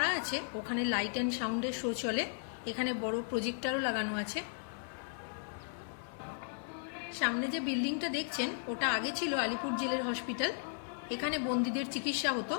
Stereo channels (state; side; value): silent; right; 54 dB below the other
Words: আছে ওখানে লাইট অ্যান্ড সাউন্ডের শো চলে। এখানে বড় প্রজেক্টরও লাগানো আছে। সামনে যে বিল্ডিংটা দেখছেন ওটা আগে ছিল আলিপুর জেলের হসপিটাল। এখানে বন্দীদের চিকিৎসা হতো।